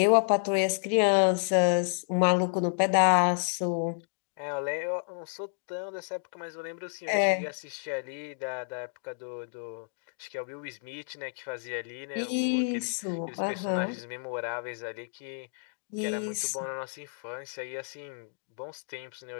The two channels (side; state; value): right; silent; digital silence